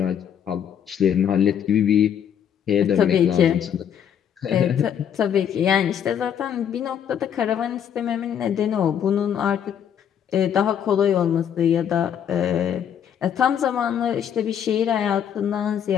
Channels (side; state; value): right; quieter; 8.8 dB